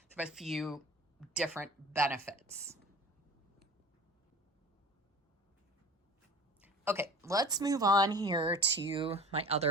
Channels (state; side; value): normal; both; correlation 0.39